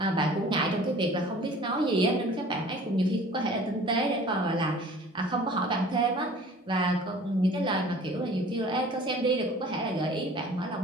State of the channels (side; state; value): both; normal; correlation 0.47